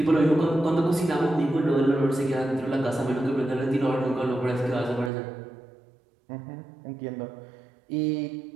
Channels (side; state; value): left; drops out; at 5.1 s